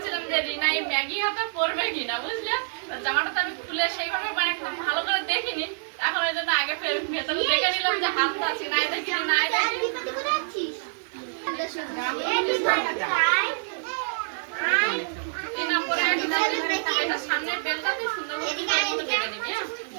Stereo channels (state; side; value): silent; left; 61 dB below the other